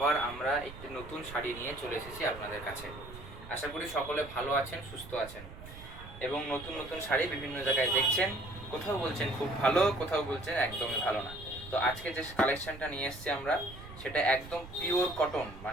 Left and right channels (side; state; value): right; noise; rumble, 15 dB below the sound